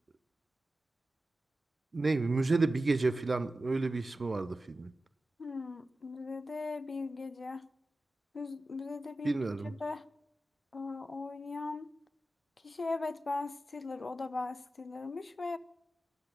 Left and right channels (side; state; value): both; normal; correlation 0.93